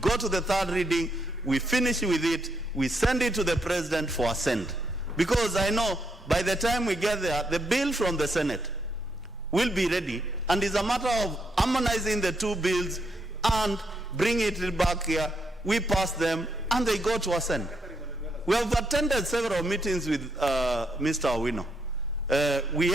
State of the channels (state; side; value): normal; both; correlation 0.78